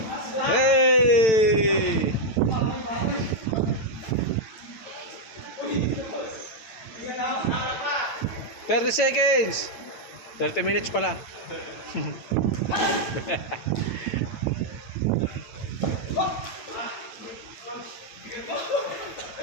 Hey! 30 seconds. 30 minutes pala.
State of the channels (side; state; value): right; late; 9.0 ms